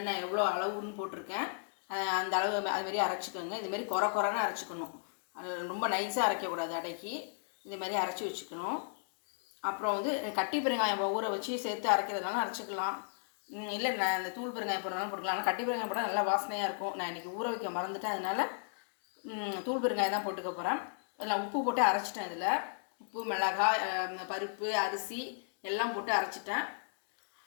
எவ்வளோ அளவுன்னு போட்டிருக்கேன். அந்த அளவு அதுமாரி அரைச்சிக்கோங்க. இதுமாரி குறைன்னு அரைச்சிக்கணும். அது ரொம்ப நைஸாக அரைக்கக்கூடாது. அடைக்கி இதுமாரி அரைச்சி வச்சுக்கணும். அப்புறம் வந்து கட்டி பெருங்காயம் ஊற வச்சு சேர்த்து அரைக்கிறதுனால அரைச்சிக்கலாம். இல்லை நான் இந்த தூள் பெருங்காயம் போடுறதுனால போட்டுக்கலாம். ஆனால் கட்டி பெருங்காயம் போட்டால் நல்லா வாசனையாக இருக்கும். நான் இன்றைக்கி ஊற வைக்க மறந்துட்டேன். அதனால் தூள் பெருங்காயம் தான் போட்டுக்க போகிறேன். அதில் உப்பு போட்டு அரைச்சிட்டேன். இதில் உப்பு, மிளகாய், பருப்பு, அரிசி எல்லாம் போட்டு அரைச்சிட்டேன்.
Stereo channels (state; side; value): silent; right; digital silence